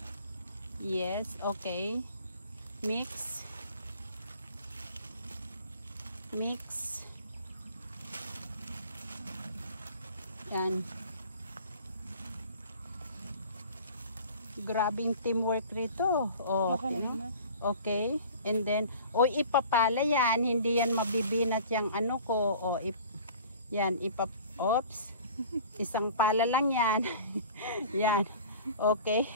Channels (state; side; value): inverted; both; correlation -0.44